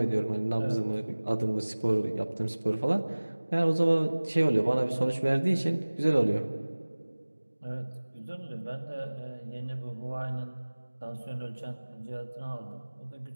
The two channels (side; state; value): both; inverted; correlation -1.00